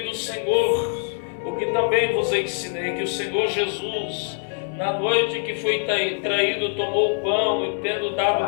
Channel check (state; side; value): silent; right; 55 dB below the other